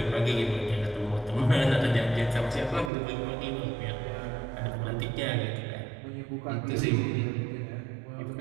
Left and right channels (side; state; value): left; drops out; at 2.9 s